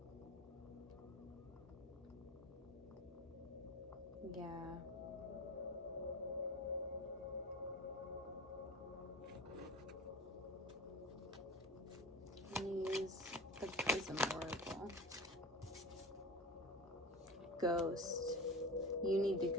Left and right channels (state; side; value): normal; both; correlation 0.33